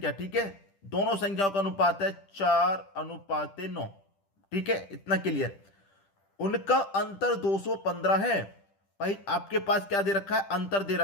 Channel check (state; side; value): late; right; 10 ms